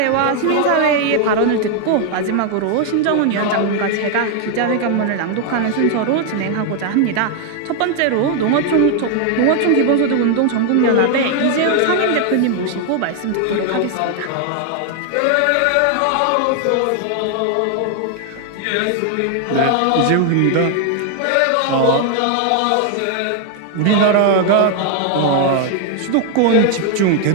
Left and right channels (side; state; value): both; different; correlation 0.00